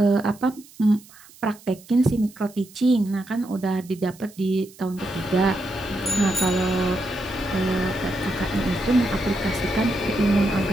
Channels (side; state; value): right; noise; hiss, 23 dB below the sound